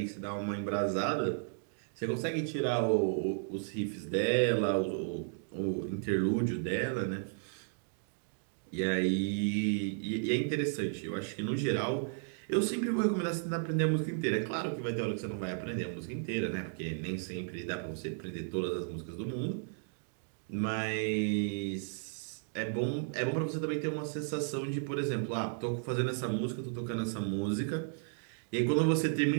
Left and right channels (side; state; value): left; silent; digital silence